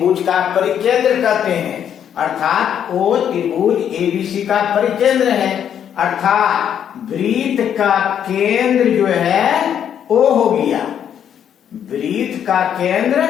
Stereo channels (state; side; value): quieter; right; 9.1 dB